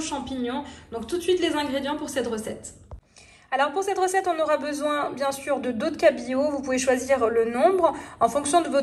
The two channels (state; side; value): identical; both; correlation 1.00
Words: Donc tout de suite les ingrédients pour cette recette. Alors pour cette recette, on aura besoin bien sûr de dos de cabillaud. Vous pouvez choisir le nombre en fonction de